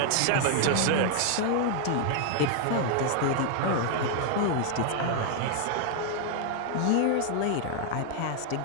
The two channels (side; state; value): both; different; correlation 0.00